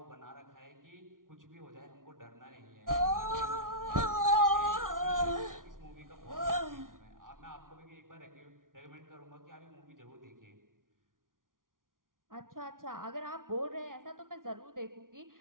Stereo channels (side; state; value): left; late; 0.89 ms